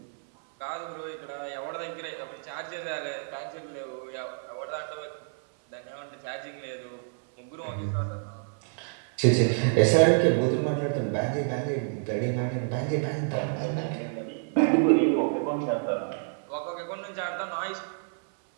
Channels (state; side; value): silent; left; 59 dB below the other